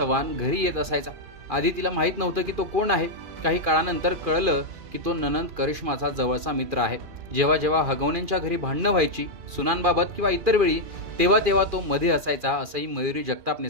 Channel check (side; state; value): left; late; 2.4 ms